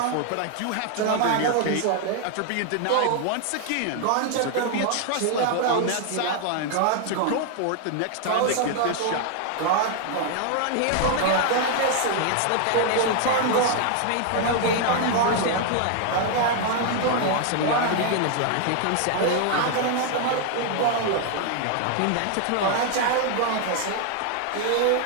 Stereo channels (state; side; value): different; both; correlation 0.00